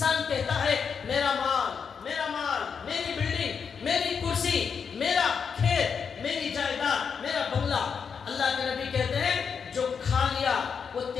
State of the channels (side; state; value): right; quieter; 6.4 dB